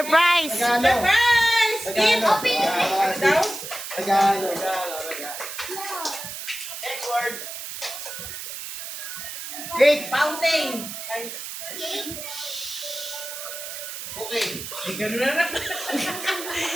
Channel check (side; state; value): right; noise; hiss, 8 dB below the sound